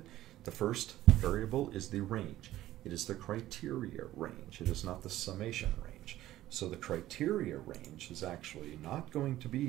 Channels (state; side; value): quieter; left; 14.6 dB